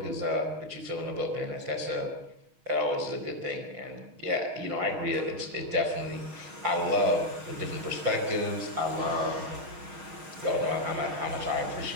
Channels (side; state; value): left; late; 6.4 ms